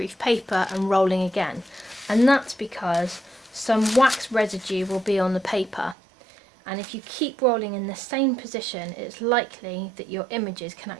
paper and rolling again. And that's because some wax residue will be on the paper. And if you keep rolling in the same position, it's likely that your images can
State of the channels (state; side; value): drops out; left; at 6.0 s